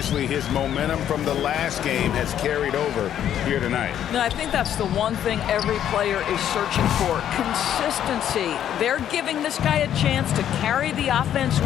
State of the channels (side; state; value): right; quieter; 10.4 dB